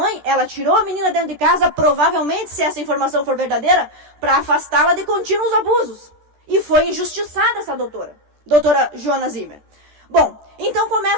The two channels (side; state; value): left; late; 14 ms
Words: Ela tirou a menina dentro de casa, provavelmente, se essa informação for verdadeira, para afastá-la de contínuos abusos. E foi injustiçada essa doutora Joana Zimmer. Bom, então